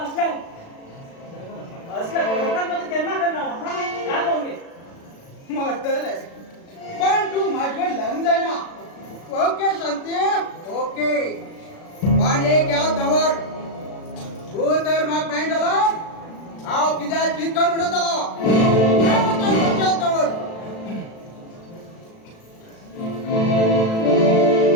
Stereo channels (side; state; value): right; late; 36 ms